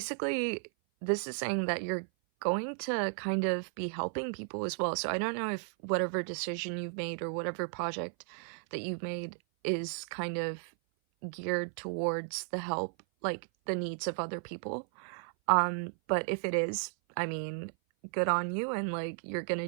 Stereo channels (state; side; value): silent; left; 55 dB below the other